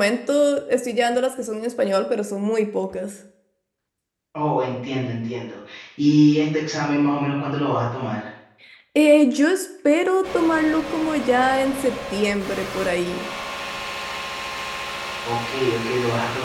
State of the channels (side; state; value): both; identical; correlation 1.00